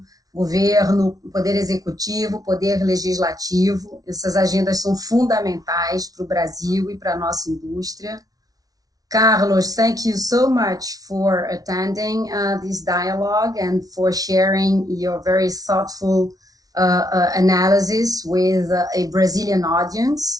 governo, poder executivo, poder legislativo. Essas agendas são fundamentais para o Brasil e para a nossa indústria. Carlos, thank you so much for attending this dialogue and for sharing your very thoughtful analysis with a Brazilian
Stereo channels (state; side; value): late; left; 0.18 ms